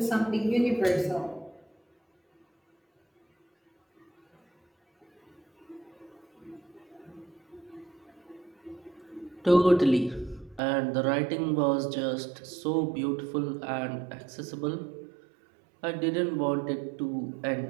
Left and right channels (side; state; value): left; drops out; at 10.6 s